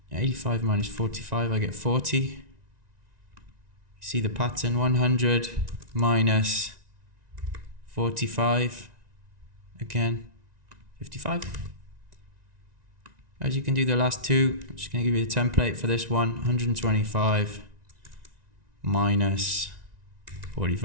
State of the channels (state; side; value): late; left; 1.9 ms